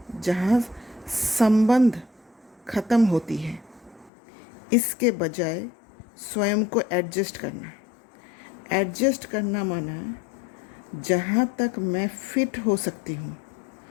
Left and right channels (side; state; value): right; drops out; at 4.1 s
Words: जहाँ संबंध खत्म होती है। इसके बजाय स्वयं को एडजस्ट करना। एडजस्ट करना माना जहाँ तक मैं फिट हो सकती हूँ